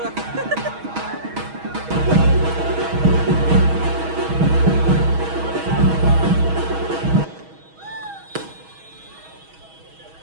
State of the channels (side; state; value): left; late; 6.3 ms